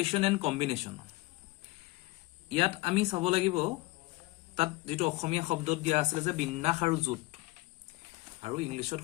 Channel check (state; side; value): quieter; right; 20.7 dB